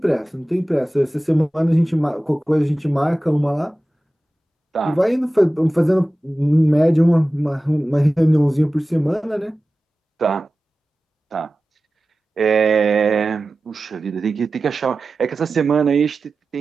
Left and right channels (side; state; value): both; normal; correlation 0.95